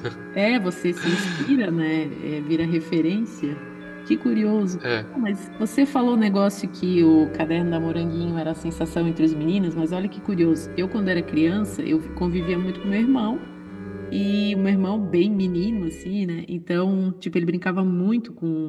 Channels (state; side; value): identical; both; correlation 1.00